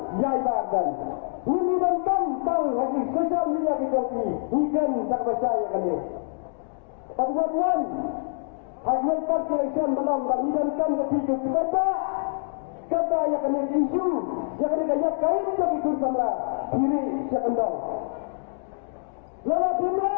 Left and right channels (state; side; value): silent; right; digital silence